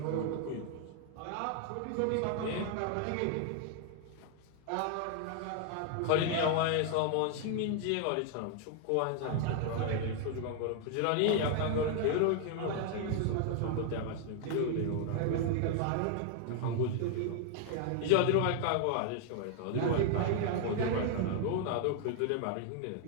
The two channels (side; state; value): both; different; correlation 0.00